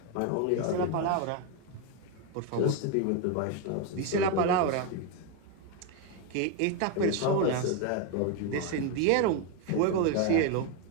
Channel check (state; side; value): different; both; correlation 0.02